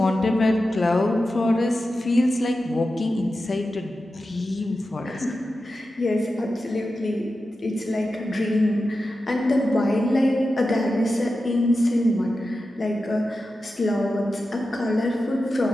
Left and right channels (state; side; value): normal; both; correlation 0.92